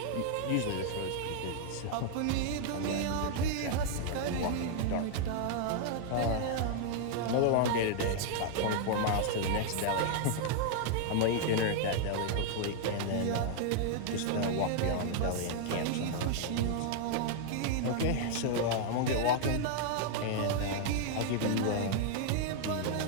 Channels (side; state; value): both; different; correlation -0.01